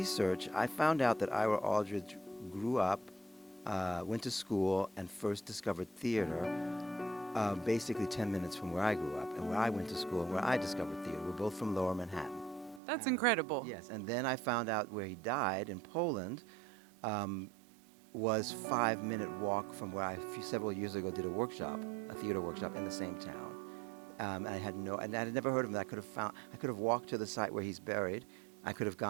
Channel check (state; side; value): drops out; left; at 12.8 s